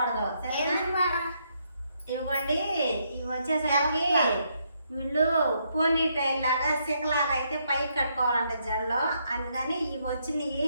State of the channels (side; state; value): both; inverted; correlation -0.75